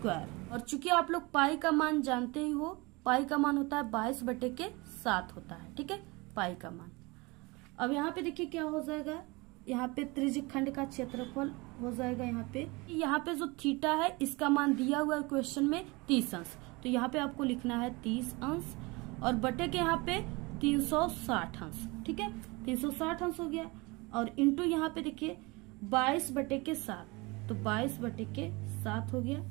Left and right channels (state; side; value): quieter; left; 25.2 dB